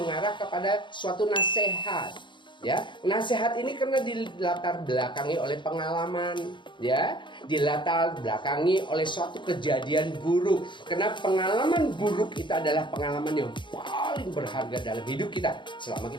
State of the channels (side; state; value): right; late; 0.23 ms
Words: kepada suatu nasihat. Ya, nasihat ini karena dilatar belakangi oleh pengalaman, ya, dilatar belakangi oleh suatu kejadian buruk. Karena pengalaman buruk itu adalah pengalaman yang paling berharga dalam hidup kita selama